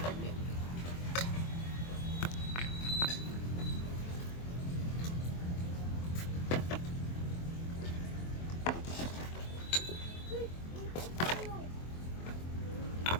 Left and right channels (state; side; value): late; right; 23 ms